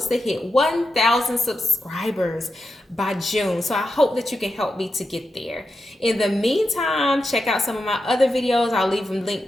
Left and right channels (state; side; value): normal; both; correlation 0.88